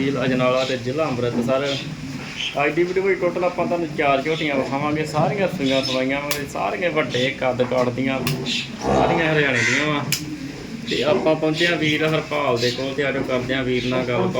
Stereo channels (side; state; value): both; identical; correlation 1.00